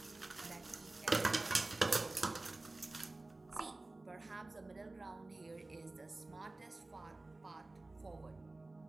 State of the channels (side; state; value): left; quieter; 3.0 dB